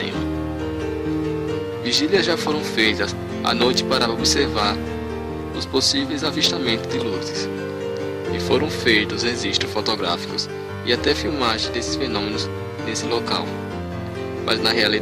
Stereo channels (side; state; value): both; identical; correlation 1.00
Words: Vigílias já foram feitas à noite para observar os possíveis avistamentos de luzes, e foram feitos registros fotográficos e até filmagens desses fenômenos nesse local. Mas na